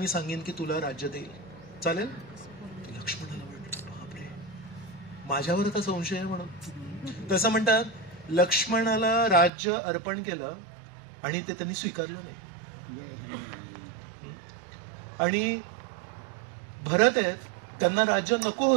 सांगेन की तुला राज्य देईल, चालेल? लक्ष्मणाला वाटलं बापरे माझ्यावर आता संशय आहे म्हणून. तसं म्हणतात लक्ष्मणाला राज्य अर्पण केलं आणि ते त्यांनी स्वीकारलं नाही. आणि भरत आहेत, त्यांना राज्य नको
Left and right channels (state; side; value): drops out; left; at 9.5 s